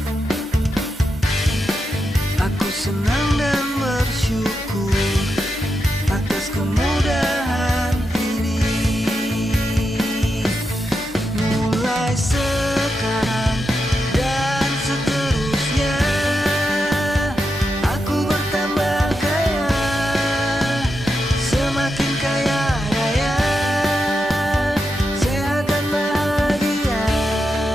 Aku senang dan bersyukur atas kemudahan ini. Mulai sekarang dan seterusnya, aku bertambah kaya, semakin kaya raya, sehat dan bahagia.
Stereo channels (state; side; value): normal; both; correlation 0.87